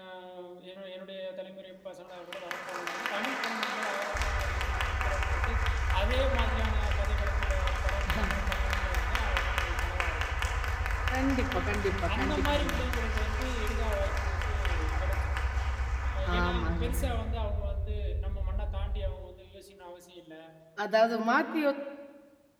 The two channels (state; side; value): identical; both; correlation 1.00